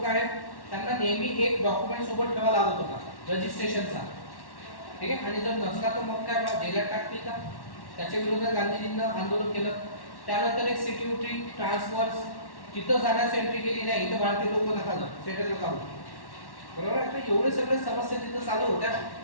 आहेत, त्यांना नेहमी एक डॉक्युमेंट सोबत ठेवा लागत होता, रजिस्ट्रेशनचा. ठीक आहे, आणि जर नसला तर मग काय जेलात टाकतील का. त्याच्या विरोधात गांधीजींना आंदोलन केलं. त्यानंतर एक सिक्युरिटी ट्रान्सफर्स, तिथं जाण्यास एंट्री केली नाही, इथं भारतीय लोक नका जाऊ, सेटल नका होऊ. बरोबर आहे. तर एवढे सगळे समस्या तिथं चालू होत्या,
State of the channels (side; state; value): right; late; 1.1 ms